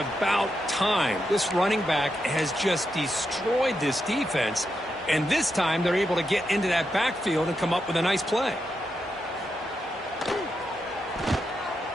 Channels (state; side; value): normal; both; correlation 0.85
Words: time. This running back has just destroyed this defense, and this time they're able to get into that backfield and come up with a nice play.